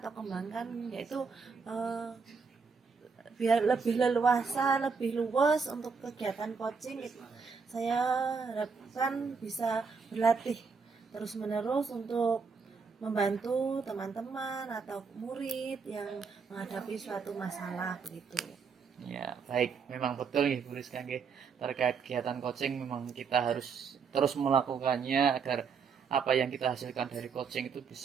kembangkan yaitu biar lebih leluasa, lebih luas untuk kegiatan coaching. Saya harapkan bisa berlatih terus-menerus untuk membantu teman-teman atau murid yang menghadapi suatu masalah begitu. Ya, baik. Memang betul nih Bu Rizka nggih. Terkait kegiatan coaching memang kita harus terus melakukannya agar apa yang kita hasilkan dari coaching itu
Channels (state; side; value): quieter; left; 5.5 dB